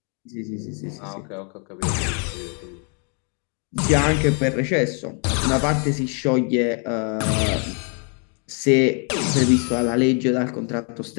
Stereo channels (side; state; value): right; quieter; 39.6 dB